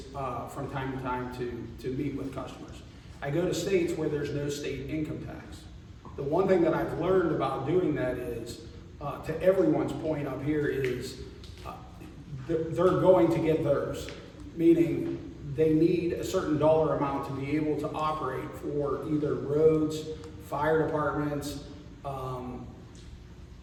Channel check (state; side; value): identical; both; correlation 1.00